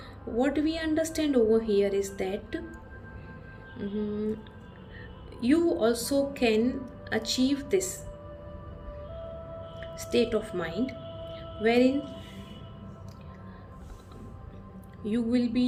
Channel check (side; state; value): both; identical; correlation 1.00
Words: What we understand over here is that you also can achieve this state of mind wherein you will